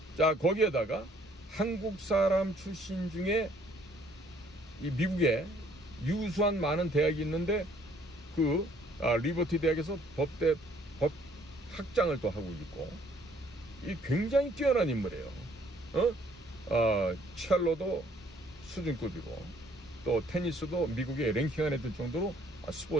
자, 거기에다가 한국 사람 출신 중에 이 미국에 유수한 많은 대학이 있는데 그 리버티 대학에서 법 학장을 또 하고 있고, 이 굉장히 뛰어난 인물이에요. 첼로도 수준급이고 또 테니스도 미국에 랭킹 안에 들 정도로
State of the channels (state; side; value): normal; both; correlation 0.62